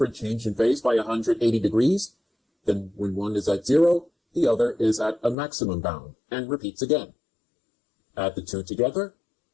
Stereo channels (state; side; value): drops out; right; at 5.4 s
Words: change in phase by 180 degrees, then when one is at 0, the other is at a maximum bound, and repeats again. Add the two together,